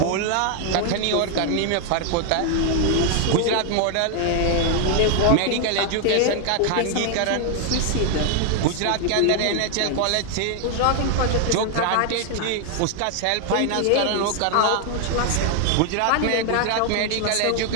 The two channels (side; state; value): both; different; correlation 0.00